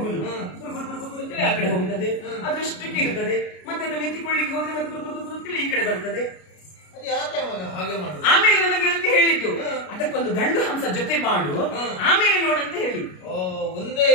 ಅಂತೇಳಿ ಆ ಕಡೆ ಹೋಗುತ್ತದೆ, ಅದರಷ್ಟಕ್ಕೆ ಇರುತ್ತದೆ. ಮತ್ತೆ ಅದನ್ನು ಎತ್ತಿಕೊಳ್ಳಿಕ್ಕೆ ಹೋದ್ರೆ ಮತ್ತೆ ಅಂತೇಳಿ ಈ ಕಡೆ ಬರ್ತದೆ. ಹಾಗೆ ಮಾಡು. ಆಮೇಲೆ ನನ್ನ ಗೆಳತಿ ಹೇಳಿದ್ದು ಅದಕ್ಕೊಂದು ಗಂಡು ಹಂಸ ಜೊತೆ ಮಾಡು, ಆಮೇಲೆ ನೋಡಂತ ಹೇಳಿ. ಒಂದೇ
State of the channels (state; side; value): late; right; 33 ms